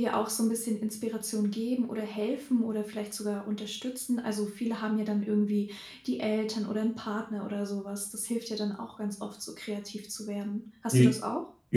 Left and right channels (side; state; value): both; identical; correlation 1.00